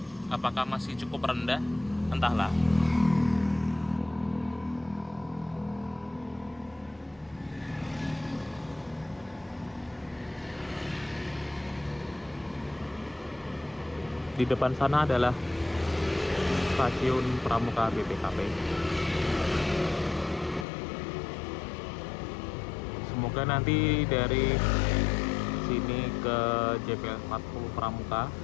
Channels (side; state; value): right; drops out; at 20.7 s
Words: Apakah masih cukup rendah? Entahlah. Di depan sana adalah stasiun Pramuka BPKP. Semoga nanti dari sini ke JPL 40 Pramuka